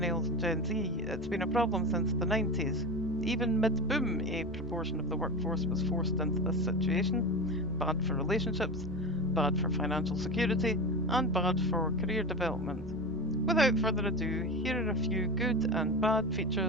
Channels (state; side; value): noise; right; rumble, 16 dB below the sound